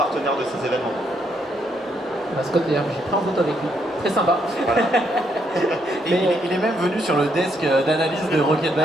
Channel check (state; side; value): normal; both; correlation 0.74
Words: de ces événements. Scott, d'ailleurs, j'ai pris en photo avec lui. Très sympa. Voilà. Il est même venu sur le desk d'analyse de Rocket